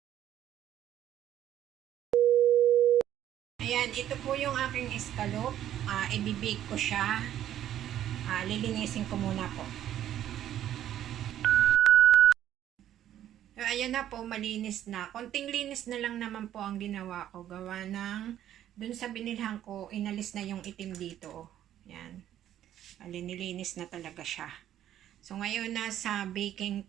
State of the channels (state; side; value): quieter; left; 11.5 dB